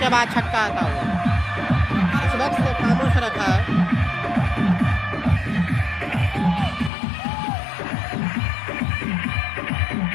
बाद छक्का आता हुआ। इस वक्त से खामोश रखा है।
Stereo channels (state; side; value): drops out; right; at 6.9 s